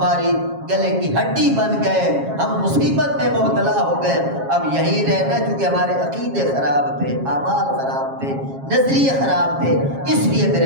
گلے کی ہڈی بن گئے، ہم مصیبت میں مبتلا ہو گئے، اب یہی رہنا چونکہ ہمارے عقیدے خراب تھے، اعمال خراب تھے، نظریے خراب تھے، اس لیے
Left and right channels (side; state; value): left; late; 7.4 ms